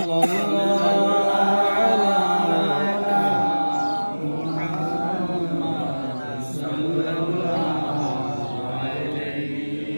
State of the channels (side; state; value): both; inverted; correlation -1.00